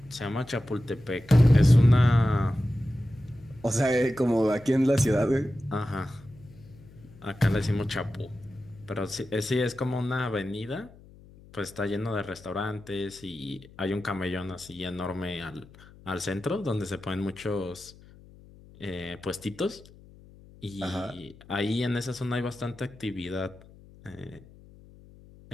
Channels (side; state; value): left; noise; hum, 22 dB below the sound